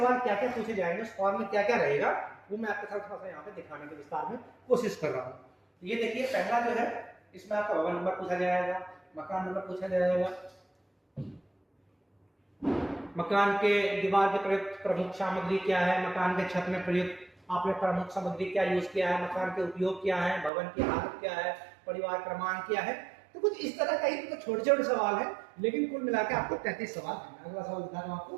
क्या क्या पूछे जाएंगे, उस फॉर्म में क्या क्या रहेगा, वो मैं आपके साथ थोड़ा सा यहाँ पे दिखाने के विस्तार में कोशिश कर रहा हूँ। ये देखिए, पहला जो है इसमें आपका भवन नंबर पूछा जाएगा, मकान नंबर पूछा जाएगा, मकान के दीवार के प्रयुक्त प्रमुख सामग्री क्या है, मकान के छत में प्रयुक्त आपने प्रमुख सामग्री क्या यूज किया है, मकान के उपयोग क्या है, भवन की हालत क्या है, परिवार क्रमांक क्या है। तो कुछ इस तरह का ही तो छोटे छोटे सवाल है, लेकिन कुल मिलाकर आपको 33 सवाल है। अगला सवाल दिखा रहा हूं आपको।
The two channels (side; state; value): left; drops out; at 20.5 s